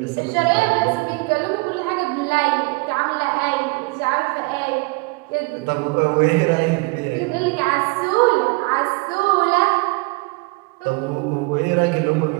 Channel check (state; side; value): quieter; left; 27.0 dB